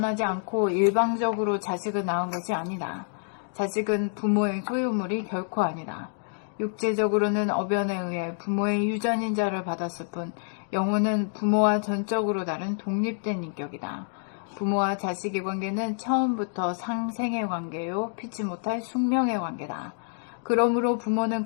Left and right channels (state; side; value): silent; right; digital silence